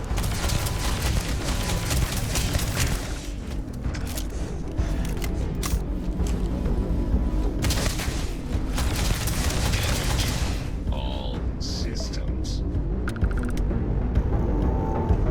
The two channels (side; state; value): both; identical; correlation 1.00